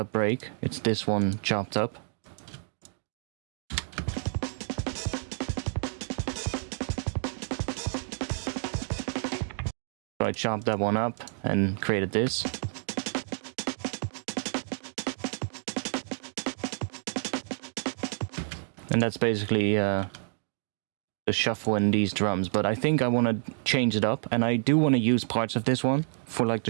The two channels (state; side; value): silent; left; digital silence